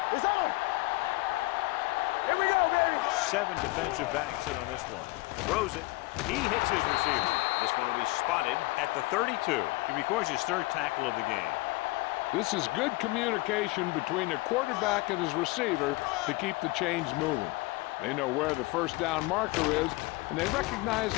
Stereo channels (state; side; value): quieter; right; 22.4 dB